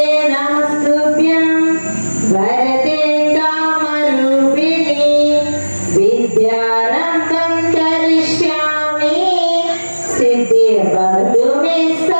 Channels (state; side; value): inverted; both; correlation -1.00